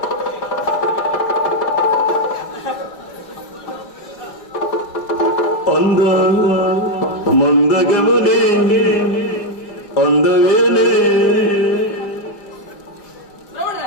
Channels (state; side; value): late; right; 5.0 ms